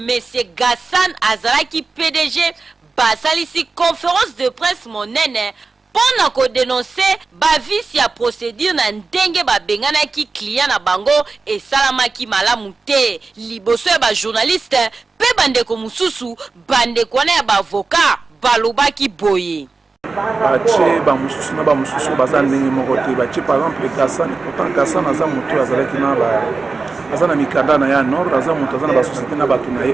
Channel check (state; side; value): quieter; left; 4.1 dB